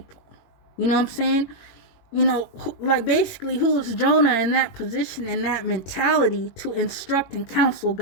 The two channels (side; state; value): right; late; 22 ms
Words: You know what I'm saying? You know, like basically, who is Jonah in that position, in that mentality, to instruct and counsel